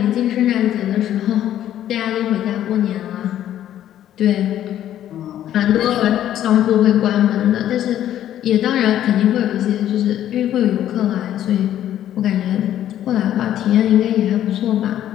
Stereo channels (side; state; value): right; quieter; 11.6 dB